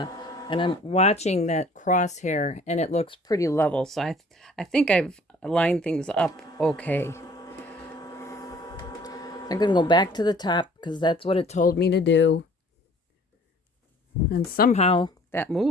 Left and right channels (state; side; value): normal; both; correlation 0.54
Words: And I'm watching that crosshair, and it looks pretty level. So I think I've lined things up okay. I'm going to go back to the top because that's what it told me to do. And somehow that